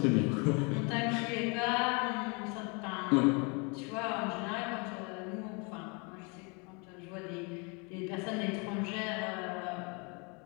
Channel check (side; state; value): right; quieter; 32.1 dB